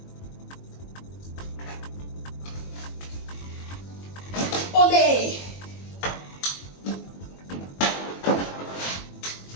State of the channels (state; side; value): late; right; 21 ms